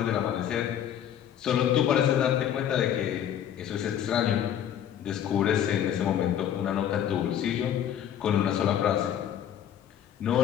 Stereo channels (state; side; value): quieter; right; 10.0 dB